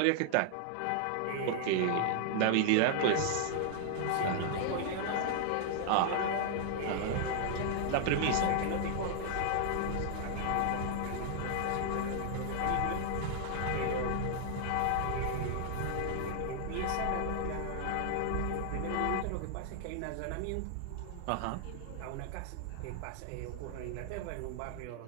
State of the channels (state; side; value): different; both; correlation 0.00